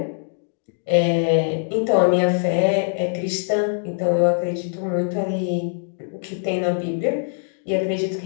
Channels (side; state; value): right; silent; 62 dB below the other